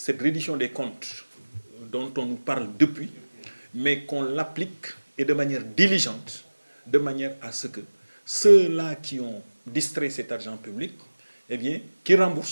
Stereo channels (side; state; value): both; inverted; correlation -1.00